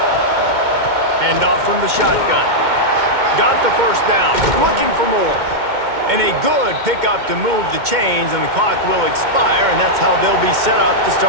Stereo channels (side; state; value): left; late; 2.1 ms